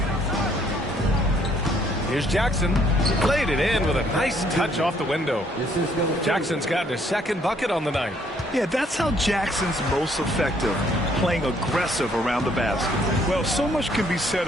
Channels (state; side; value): normal; both; correlation 0.66